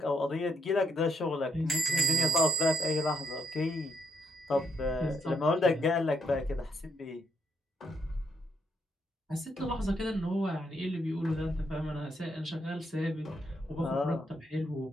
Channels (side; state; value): both; normal; correlation 0.75